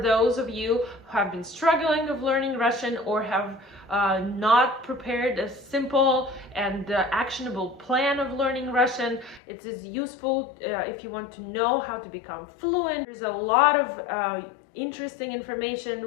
of you who have been struggling of learning Russian or have not prepared a simple and actionable plan of learning Russian. It is useful if you want to know how to become fluent. There's a lot of interesting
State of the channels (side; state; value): right; drops out; at 9.4 s